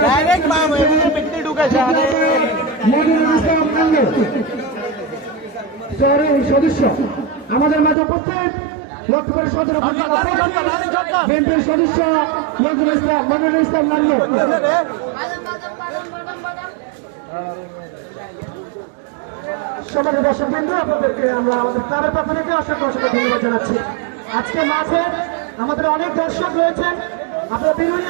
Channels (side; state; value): left; drops out; at 8.0 s